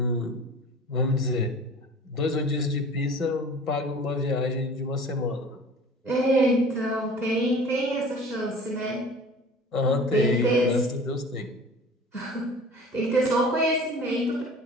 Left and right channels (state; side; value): normal; both; correlation 0.43